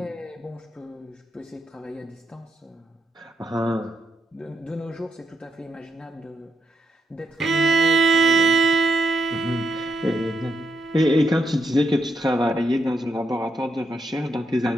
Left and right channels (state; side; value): normal; both; correlation 0.81